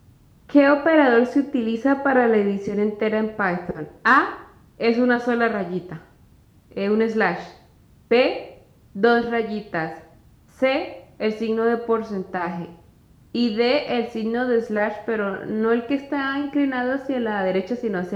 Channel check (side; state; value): both; identical; correlation 1.00